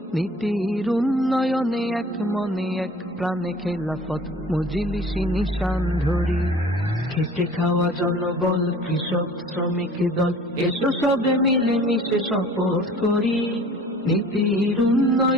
নীতির উন্নয়নে এক মনে এক প্রাণে খেলাফত মজলিসি নিশান ধরি। খেটে খাওয়া জনবল, কৃষক শ্রমিক দল, এসো সবে মিলে মিশে শপথ করি, নীতির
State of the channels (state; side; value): normal; both; correlation 0.47